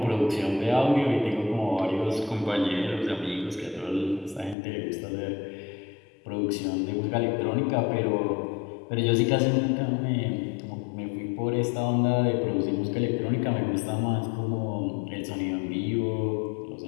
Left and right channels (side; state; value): right; drops out; at 4.5 s